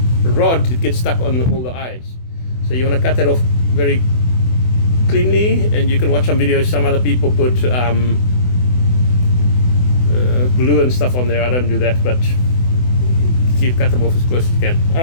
rod, it gets stuck on all the eyes. So you want to cut that off very cleanly, and you can watch some videos. Some other people put glue and stuff on there. I don't do that, but cut them off as close as you can.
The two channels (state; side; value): late; right; 24 ms